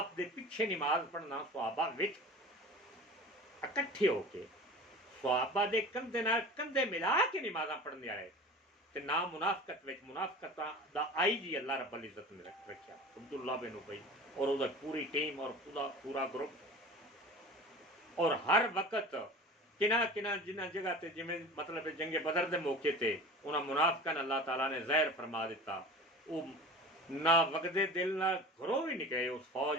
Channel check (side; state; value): both; normal; correlation 0.37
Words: دے پیچھے نماز پڑھنا صحابہ وچ اکٹھے ہو کے صحابہ دے کندھے نال کندھے ملا کے نمازاں پڑھنے والے تے نہ منافقت وچ، منافقت دا آئی جی اللہ رب العزت نے رکھیا عبداللہ بن ابی اور وہ پوری ٹیم اور پورا گروپ، اور ہر وقت کنہ جنہ جگہ تے جویں مطلب جنگ بدر دے موقع تے انہاں منافقاں اللہ تعالیٰ نے ظاہر فرما دیتا، وہ نہ وگدے دل نہ گھروں بھی نکلے اس